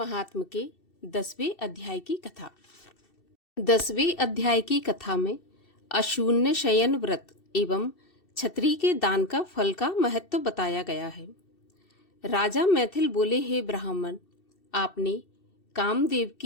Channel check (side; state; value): right; late; 2.7 ms